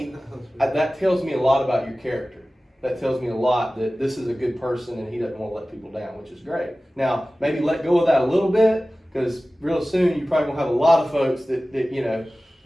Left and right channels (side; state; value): both; normal; correlation 0.96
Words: that tells me a lot about your character. That tells me a lot that this is a good person and he doesn't want to let people down, which is great. Now, maybe let go of that a little bit because real soon you're probably gonna have a lot of folks that you know